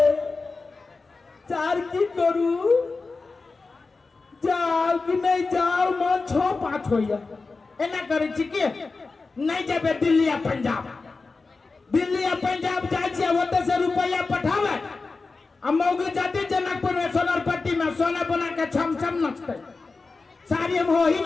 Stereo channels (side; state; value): right; quieter; 4.0 dB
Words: चार की करू जाओ कि नहीं जाओ मन 6-5 होइया एना करे छी के नहीं जाबे दिल्ली या पंजाब जाय छै ओते से रुपया पठावे मौगी जाते जनकपुर में सोनरपट्टी में सोना बना के छम छम नचते साड़ी हम हो ही